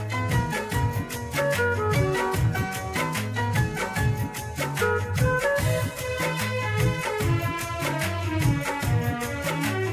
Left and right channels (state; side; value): identical; both; correlation 1.00